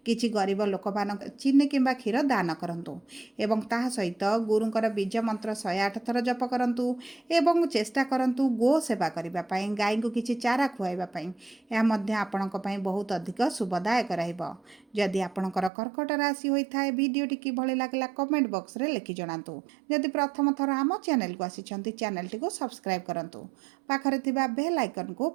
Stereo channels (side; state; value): left; drops out; at 15.7 s